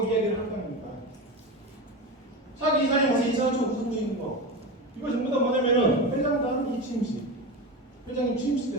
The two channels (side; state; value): both; normal; correlation 0.22